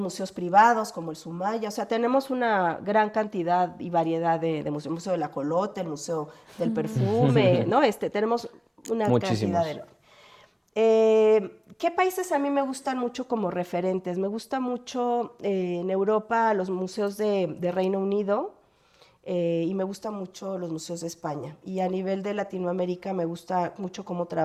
privados como el Sumaya, o sea, tenemos una gran cantidad y variedad de museos, el Museo del Ajolote, el Museo del Perfume, ¿no? Tenemos una cantidad enorme. ¿Qué países a mí me gustan mucho como referentes? Me gusta mucho en Europa los museos de Reino Unido y me gustan mucho los museos de España. Y a nivel de Latinoamérica me gusta mucho cómo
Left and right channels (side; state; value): both; identical; correlation 1.00